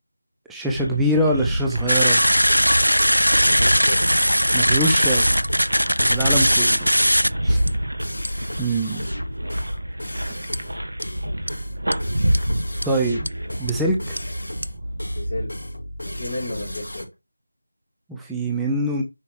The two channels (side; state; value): both; inverted; correlation -0.89